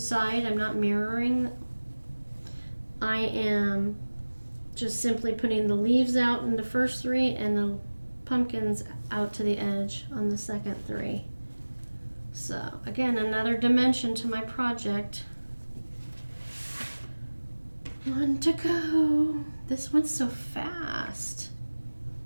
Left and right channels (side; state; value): both; inverted; correlation -1.00